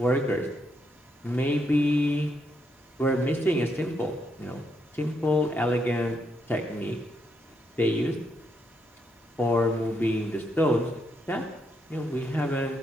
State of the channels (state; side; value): normal; both; correlation 0.78